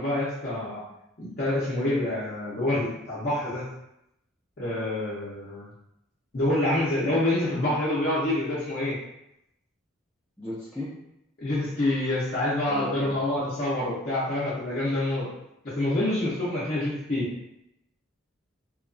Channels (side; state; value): both; normal; correlation 0.49